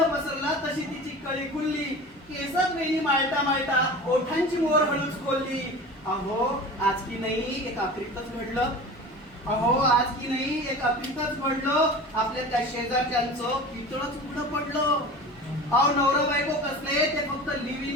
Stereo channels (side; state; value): both; normal; correlation 0.35